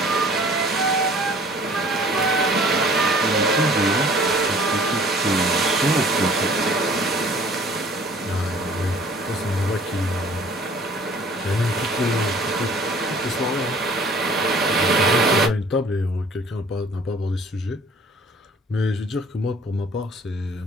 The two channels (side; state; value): both; normal; correlation 0.52